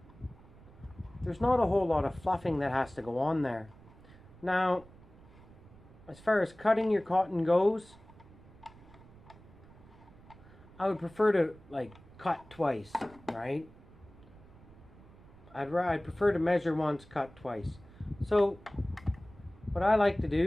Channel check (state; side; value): noise; right; rumble, 22 dB below the sound